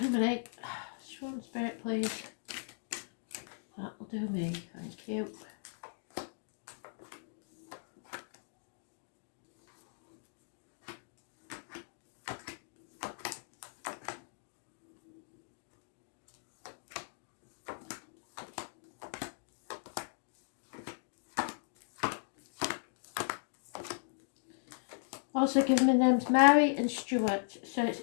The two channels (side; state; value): right; silent; digital silence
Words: Show spirit, please. That'll do me. Thank you. Also given me names Mary and Stuart, so it's